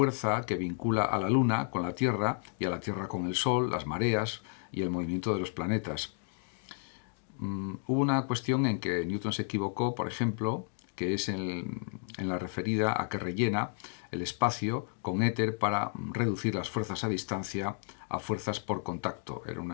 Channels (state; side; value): silent; right; 56 dB below the other